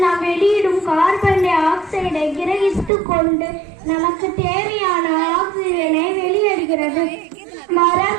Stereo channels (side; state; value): left; drops out; at 2.9 s